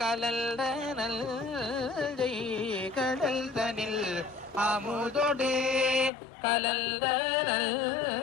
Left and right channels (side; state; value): right; drops out; at 6.1 s